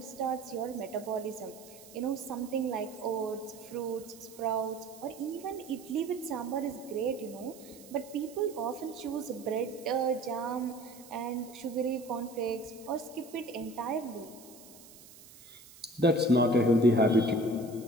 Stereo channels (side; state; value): right; noise; hiss, 20 dB below the sound